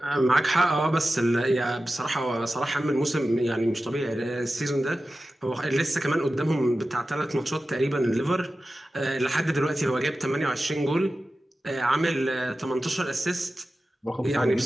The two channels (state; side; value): normal; both; correlation 0.94